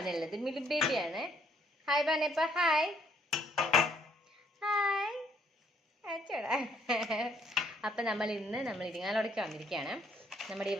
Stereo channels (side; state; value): both; normal; correlation 0.67